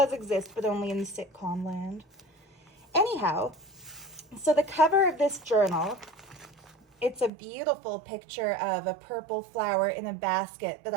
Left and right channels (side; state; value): left; drops out; at 7.3 s